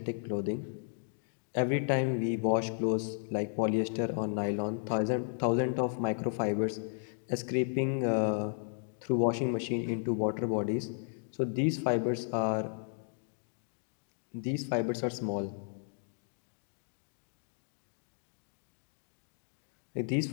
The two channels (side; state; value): right; silent; digital silence